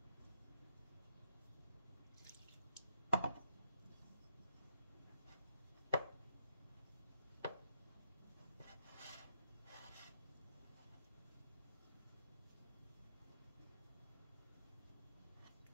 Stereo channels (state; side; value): inverted; both; correlation -0.78